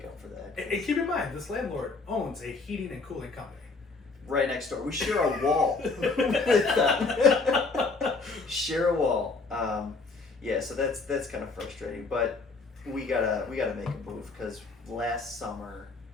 up for that. And keep in mind, this landlord owns a heating and cooling company. Right next door. We share a wall with them. Share a wall. Yeah, so that's kind of frustrating, but we gotta make a move because last summer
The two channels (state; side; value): quieter; right; 3.9 dB